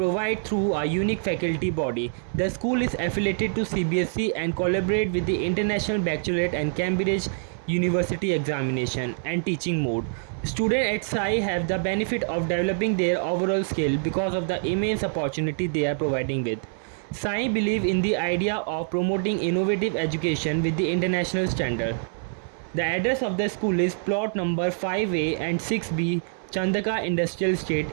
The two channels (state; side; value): silent; left; 61 dB below the other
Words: through a unique faculty body. The school is affiliated to CBSE and collaborate with the International Baccalaureate and Cambridge University examination and teaching mode. Students at Sai have the benefit of developing their overall skill because of the immense opportunity they are providing with. Sai believe in the idea of promoting innovative education with the international standard. The address of the school is plot number 5A and 6B, Chandaka Industrial